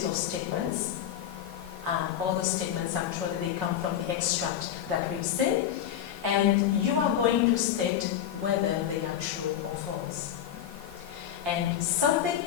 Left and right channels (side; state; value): right; quieter; 10.2 dB